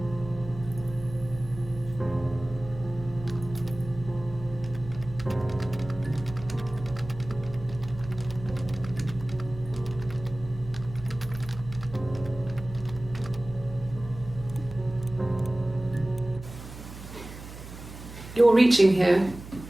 You're reaching here.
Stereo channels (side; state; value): right; noise; hum, 13 dB below the sound